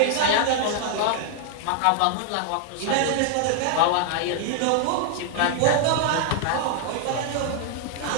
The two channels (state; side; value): different; both; correlation 0.00